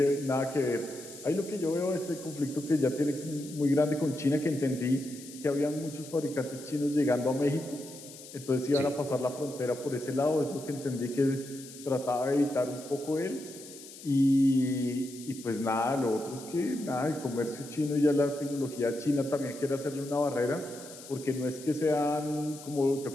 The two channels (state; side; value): noise; left; hiss, 16 dB below the sound